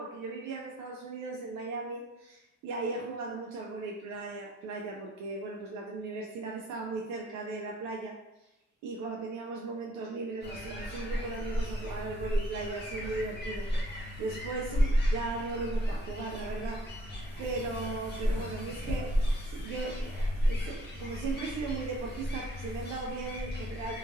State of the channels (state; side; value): normal; both; correlation 0.62